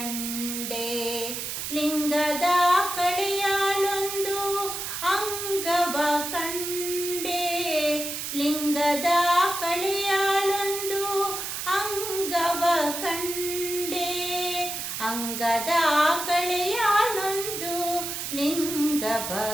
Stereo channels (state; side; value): noise; right; hiss, 5 dB below the sound